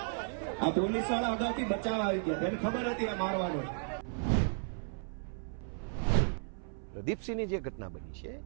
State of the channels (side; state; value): left; silent; 55 dB below the other